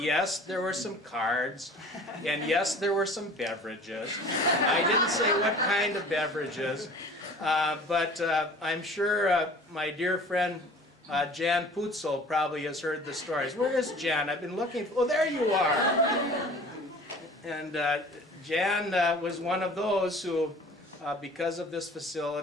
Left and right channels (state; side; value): normal; both; correlation 0.45